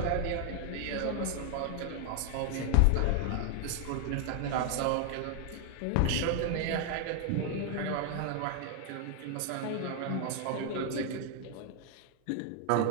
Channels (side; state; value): both; different; correlation 0.00